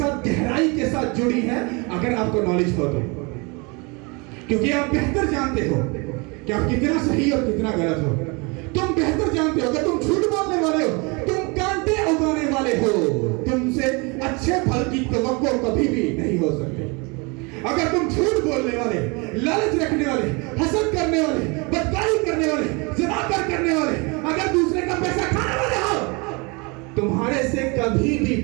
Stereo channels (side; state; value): left; quieter; 29.2 dB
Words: गहराई के साथ जुड़ी है, अगर आपको नॉलेज हो तो, क्योंकि आप बेहतर जानते हो कि आप कितना सही और कितना गलत हो। तुम बेहतर जानते हो, अगर तुम झूठ बोलने वाले हो, तुम कांटे उगाने वाले हो, तुमसे अच्छे फल की तवक्को कभी भी नहीं हो सकती। अगर तुम झूठ बोलने वाले, लालच रखने वाले, हसद करने वाले, बदकारी करने वाले, ज़िनाकर करने वाले, अगर दूसरे का पैसा खाने वाले हो, तुम्हारे से कभी भी